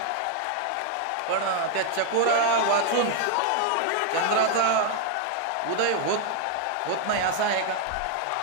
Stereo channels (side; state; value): both; different; correlation 0.00